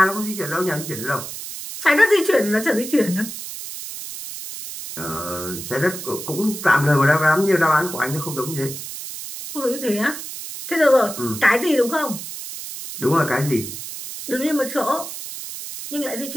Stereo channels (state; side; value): noise; right; hiss, 9 dB below the sound